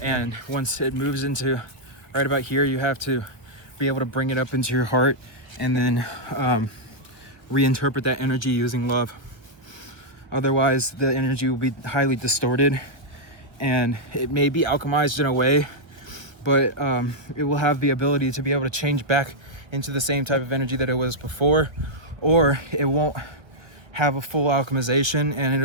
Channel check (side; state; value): left; late; 1.5 ms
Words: and once it moves into right about here, you have to be able to bring it up into your heart, and then reinterpret that energy using love. Otherwise the energy will be highly distorted, and it may be alchemized in a way, but it will have the ability to be able to change back into the same type of energy that it was before, or it won't have a full alchemization, and